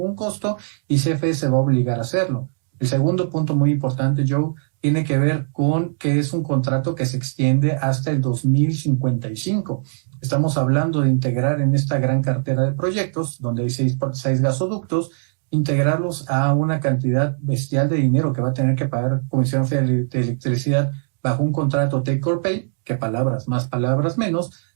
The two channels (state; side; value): silent; left; digital silence